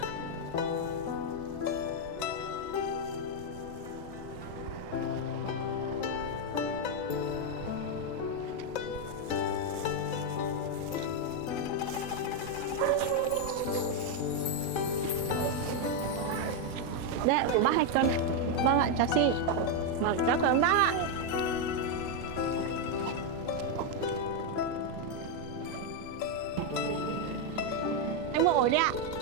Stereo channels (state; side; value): late; right; 3.8 ms